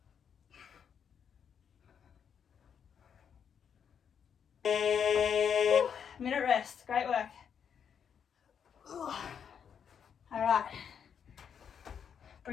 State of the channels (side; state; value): right; quieter; 7.6 dB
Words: Minute rest, great work. All right,